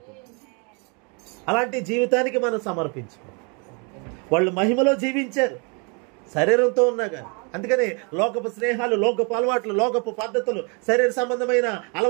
అలాంటి జీవితానికి మనం సమర్పించుకోవాలి. వాళ్ళు మహిమలో జీవించారు శరీరంతో ఉన్నాగా. అందుకని లోకపు స్నేహాలు, లోకపు అలవాట్లు, లోకపు పద్ధతులు, శరీర సంబంధమైన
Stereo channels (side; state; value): left; quieter; 34.1 dB